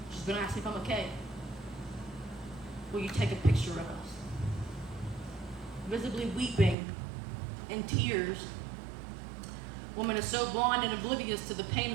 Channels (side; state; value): left; drops out; at 6.8 s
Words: She's going to ask me if I'm okay. Will you take a picture of us? Visibly weeping in tears. Woman is so blind and oblivious to the pain